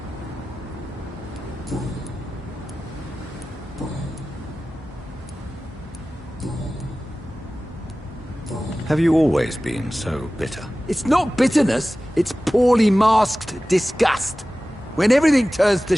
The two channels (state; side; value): normal; both; correlation 0.96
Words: Have you always been so bitter? It's not bitterness, it's poorly masked disgust. When everything turns to